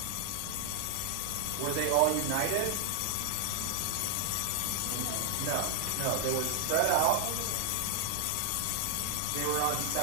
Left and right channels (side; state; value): both; different; correlation 0.00